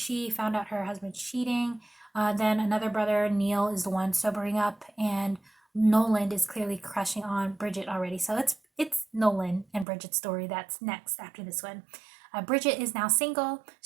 found out her husband cheating. Then another brother, Neil, is the one sobering up, and Nolan is clearly crushing on Bridget already. So it's Nolan and Bridget's story that's next after this one. Bridget is now single.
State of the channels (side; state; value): left; drops out; at 9.9 s